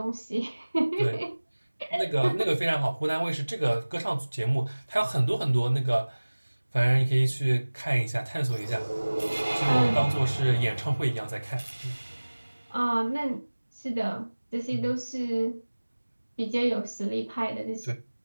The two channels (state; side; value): inverted; both; correlation -1.00